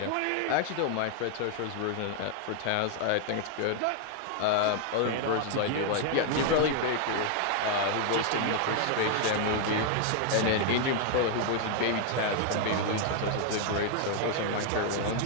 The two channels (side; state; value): both; different; correlation 0.00